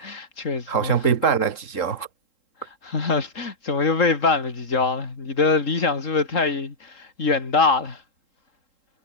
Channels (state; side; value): late; right; 3.8 ms